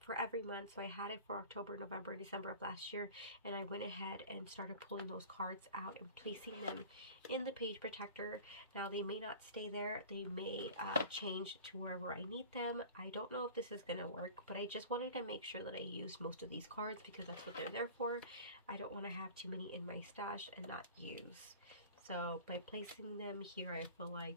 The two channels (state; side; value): inverted; both; correlation -0.41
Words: for every month, so I had it for October, November, and December of last year, and I went ahead and started pulling those cards out and placing them in the page protector. Now they may not stay there, they may change to wherever I need them. I don't know if this is going to work, but I just wanted to make sure that I used most of these cards because that's what they're there for. I don't want to have too many in my stash and not use. So by placing them here, I feel like